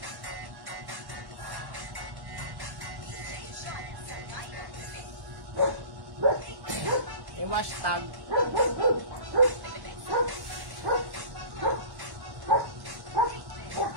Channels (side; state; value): left; late; 1.1 ms